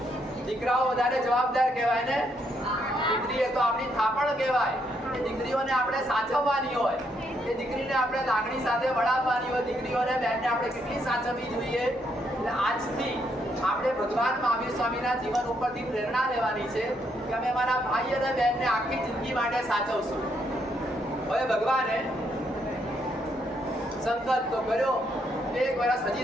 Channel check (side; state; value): both; normal; correlation 0.75